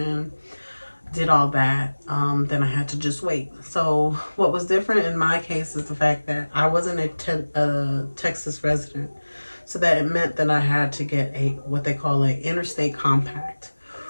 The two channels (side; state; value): both; inverted; correlation -1.00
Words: did all that. Then I had to just wait. So what was different in my case is the fact that I wasn't a Texas resident. So that it meant that I had to get a what they call an interstate compact,